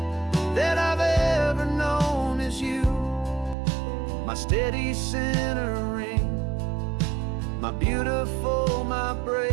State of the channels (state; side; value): drops out; left; at 3.6 s